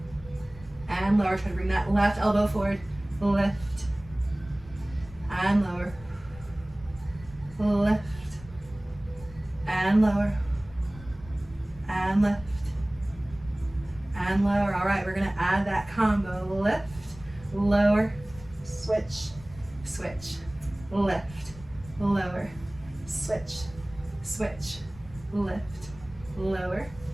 and lower. Try to bring that left elbow forward. Lift and lower. lift, and lower, and lift, and lower. All right, we're gonna add that combo. Lift, lower, switch, switch, lift, lower, switch, switch, lift, lower,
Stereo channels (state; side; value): noise; left; rumble, 19 dB below the sound